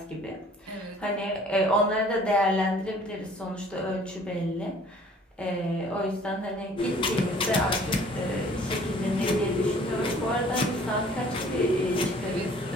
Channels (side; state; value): both; normal; correlation 0.53